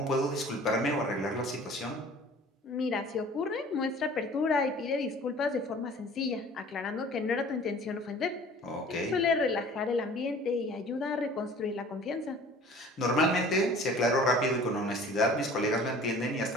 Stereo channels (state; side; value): normal; both; correlation 0.47